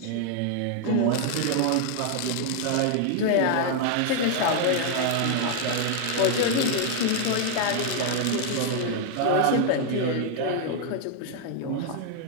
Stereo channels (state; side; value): different; both; correlation 0.00